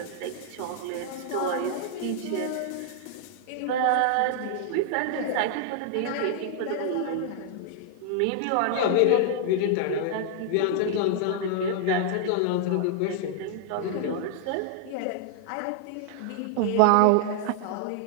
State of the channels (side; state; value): both; different; correlation -0.01